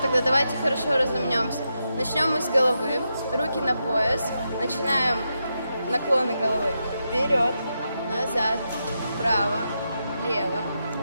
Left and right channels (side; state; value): both; inverted; correlation -0.85